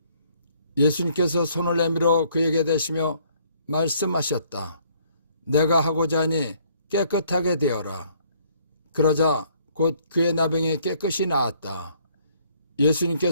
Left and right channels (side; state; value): both; inverted; correlation -0.63